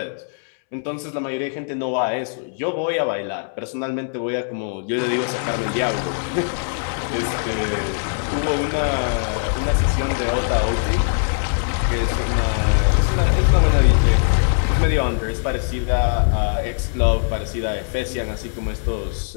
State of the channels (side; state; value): right; silent; 65 dB below the other